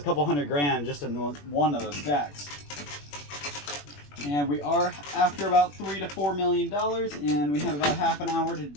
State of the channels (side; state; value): right; late; 21 ms